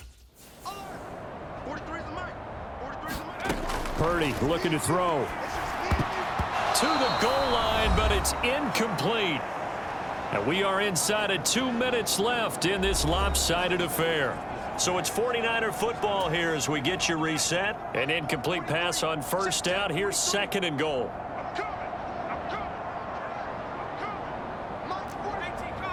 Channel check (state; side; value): identical; both; correlation 1.00